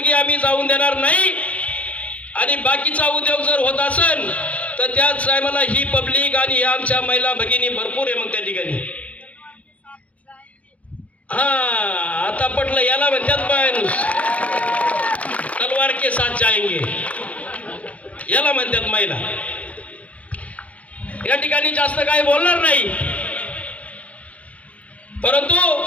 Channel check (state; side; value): late; right; 0.066 ms